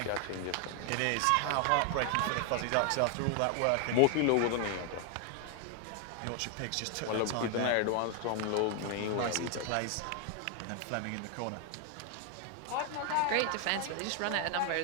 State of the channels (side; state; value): both; different; correlation 0.00